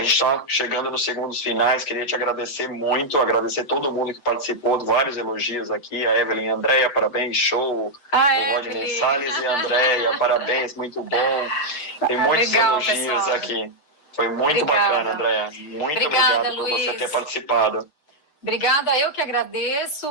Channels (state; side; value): late; right; 6.7 ms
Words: está chegando nos segundos finais, queria te agradecer muito, agradecer todo mundo que participou, vários elogios aqui, a Evelyn e a Andréia, parabéns, show, o Rodney Salles e a Andréia, parabéns, muito bom, tem muitos elogios pessoal. Aqui, foi muito bacana, Andréia, muito obrigado por você ter participado. Obrigada, eu que agradeço,